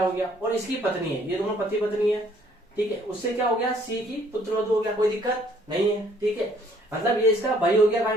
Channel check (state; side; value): normal; both; correlation 0.62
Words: हो गया, और इसकी पत्नी है, ये दोनों पति पत्नी है। ठीक है, उससे क्या हो गया? सी की पुत्र वधु हो गया, कोई दिक्कत नहीं है। ठीक है, मतलब ये इसका भाई हो गया।